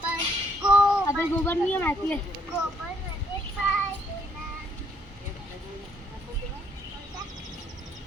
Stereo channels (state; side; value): normal; both; correlation 0.69